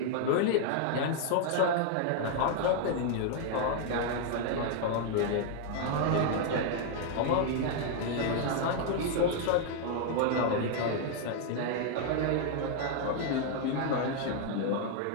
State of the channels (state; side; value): different; both; correlation 0.00